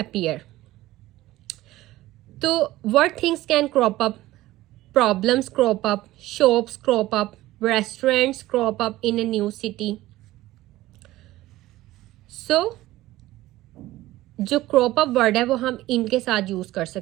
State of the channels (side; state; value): left; quieter; 16.5 dB